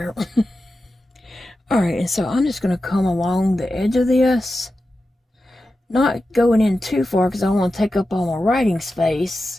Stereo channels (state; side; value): normal; both; correlation 0.92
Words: Alright, and so I'm just going to come along the edge of this. Not going in too far because I don't want to take up all my writing